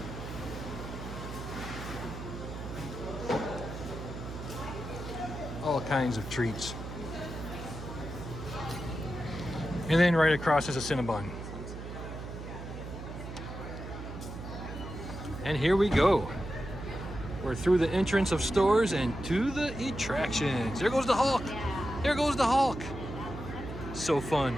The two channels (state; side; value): noise; right; hum, 9 dB below the sound